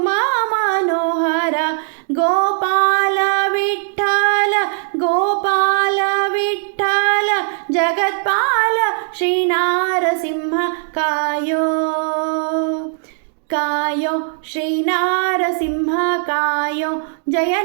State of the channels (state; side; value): silent; left; 67 dB below the other